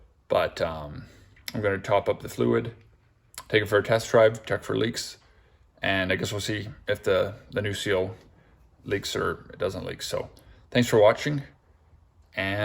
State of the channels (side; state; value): both; identical; correlation 1.00